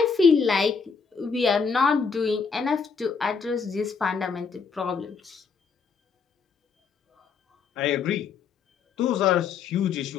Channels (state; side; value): quieter; right; 5.6 dB